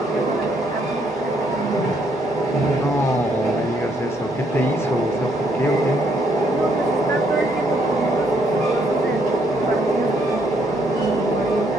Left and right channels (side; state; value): both; normal; correlation 0.71